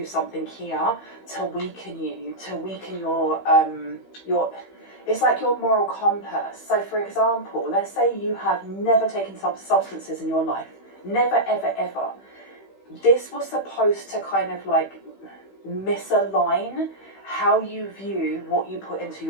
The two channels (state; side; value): late; right; 15 ms